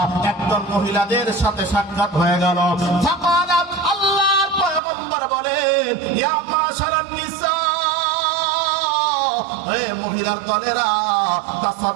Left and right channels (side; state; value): left; drops out; at 4.8 s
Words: একদল মহিলাদের সাথে সাক্ষাৎ হয়ে গেল। ফাকালাত, আল্লাহর পয়গম্বর বলেন ইয়া মাশারান নিসা, হে মহিলার দলেরা,